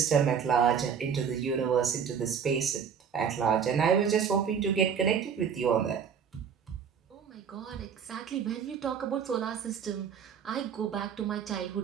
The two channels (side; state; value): left; quieter; 7.2 dB